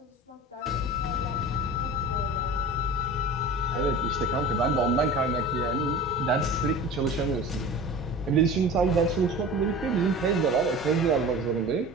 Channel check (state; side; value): normal; both; correlation 0.37